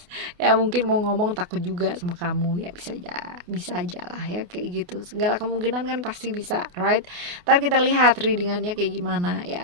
ya mungkin mau ngomong takut juga sama kamu ya, bisa aja lah ya kayak gitu, segala kemungkinan kan pasti bisa, right? Ntar kita lihat readingannya kayak gimana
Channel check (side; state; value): left; late; 28 ms